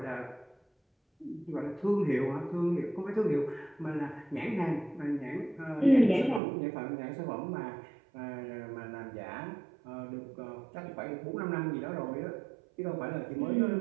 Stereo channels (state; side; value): drops out; left; at 6.4 s